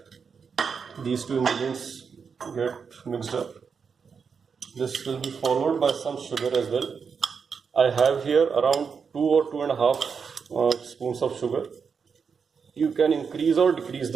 these 2 ingredients get mixed up. This will be followed by some sugar as well. I have here around 2 or 2.5 spoons of sugar. You can increase or decrease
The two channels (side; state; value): left; quieter; 6.0 dB